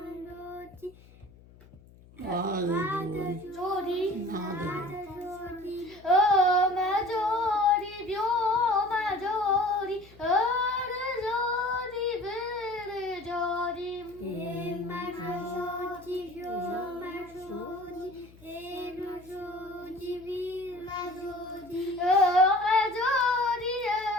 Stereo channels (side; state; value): left; noise; hum, 24 dB below the sound